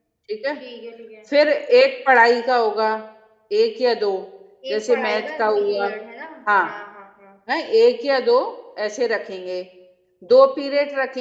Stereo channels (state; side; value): identical; both; correlation 1.00